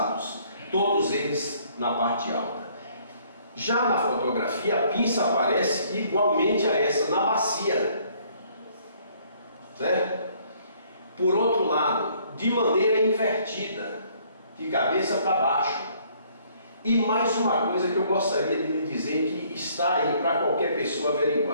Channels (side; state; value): both; inverted; correlation -0.62